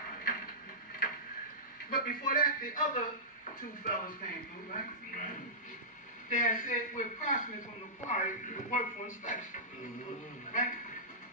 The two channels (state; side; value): normal; both; correlation -0.17